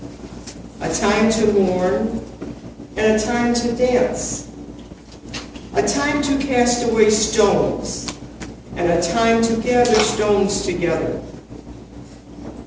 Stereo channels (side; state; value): both; identical; correlation 1.00